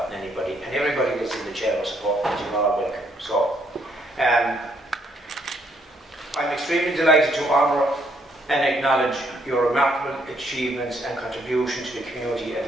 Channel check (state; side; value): normal; both; correlation 0.71